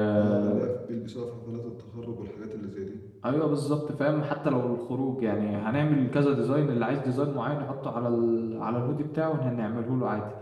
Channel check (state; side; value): identical; both; correlation 1.00